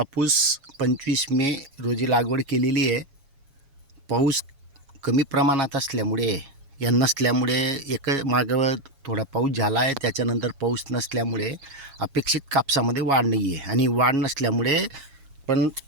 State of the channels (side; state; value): left; late; 7.3 ms